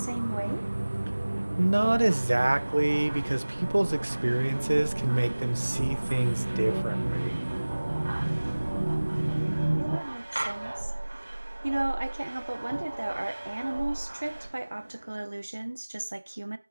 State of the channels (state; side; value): inverted; both; correlation -1.00